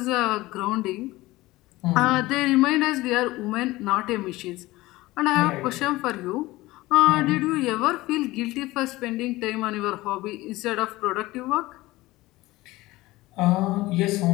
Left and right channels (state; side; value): quieter; right; 19.0 dB